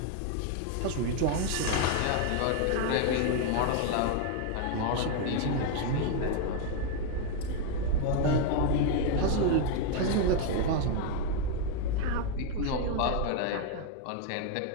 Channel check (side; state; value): both; different; correlation 0.00